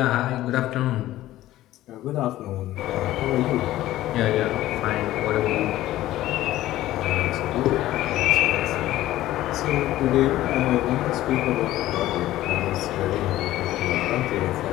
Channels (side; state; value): right; quieter; 15.0 dB